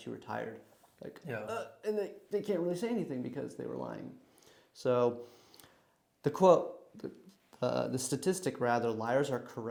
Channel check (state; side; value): identical; both; correlation 1.00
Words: you were tired. Like, and they can't really say anything because they were lying. So the quote, the statistic rather, liars are